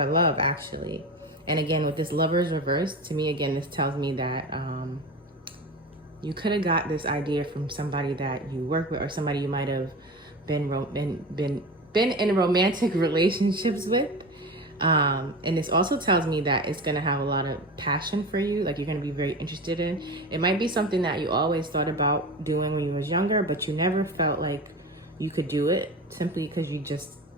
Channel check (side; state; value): both; normal; correlation 0.29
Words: love, actually. And again, with this Lover's reverse, to me, again, this tells me that you could have got this idea from somebody that you work with or somebody you might have been in romantic relationships with. And this also tells me that it's going to have a lot of passion for you, like you're going to be very interested in. It might be something that you always thought about doing when you was younger, but you never felt like you could do it simply because you just